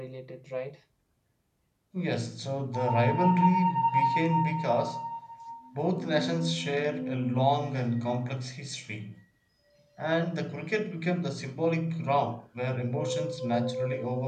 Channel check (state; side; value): identical; both; correlation 1.00